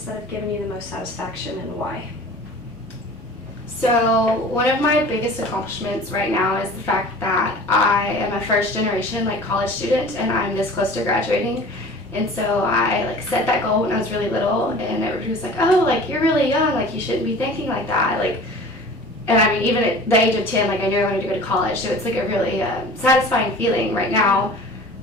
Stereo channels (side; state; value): both; normal; correlation 0.42